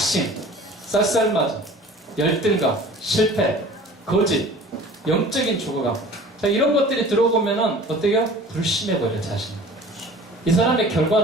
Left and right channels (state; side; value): normal; both; correlation 0.45